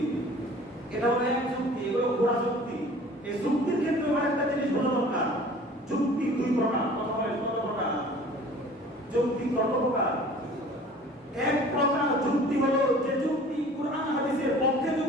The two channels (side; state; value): both; normal; correlation 0.47